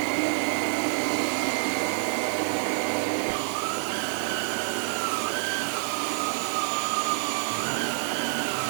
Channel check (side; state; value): left; silent; 60 dB below the other